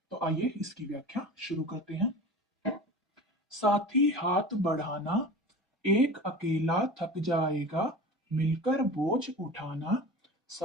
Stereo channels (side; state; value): both; normal; correlation 0.35